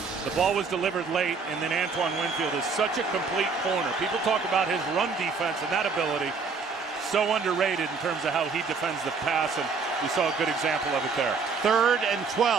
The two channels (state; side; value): quieter; left; 5.0 dB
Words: The ball was delivered late, and then Antoine Winfield is such a complete corner. People talk about his run defense and that ability. So underrated in terms of how he defends the pass, and we saw a good example of it there. 3rd and